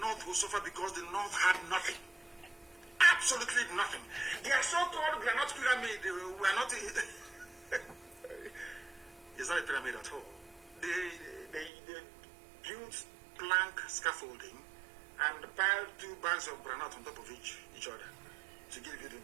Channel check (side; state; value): left; drops out; at 11.7 s